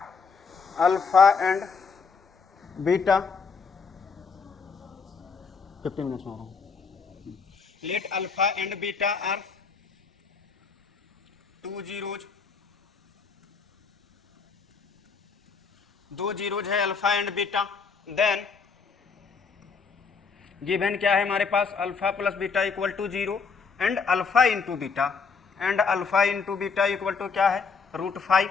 alpha and beta 15 minutes में हो रहा हूँ। Let alpha and beta are 2 zeros, 2 zeros है alpha and beta. Then given क्या है हमारे पास, alpha plus beta equal to 0 and alpha into beta and alpha into beta equal to क्या है, √5।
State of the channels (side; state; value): right; quieter; 5.3 dB